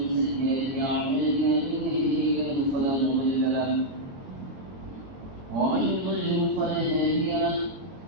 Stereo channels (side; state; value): left; late; 22 ms